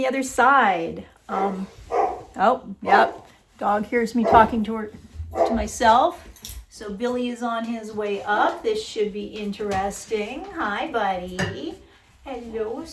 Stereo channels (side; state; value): both; identical; correlation 1.00